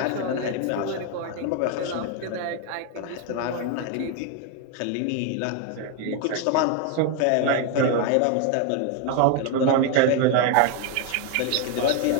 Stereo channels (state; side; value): different; both; correlation 0.01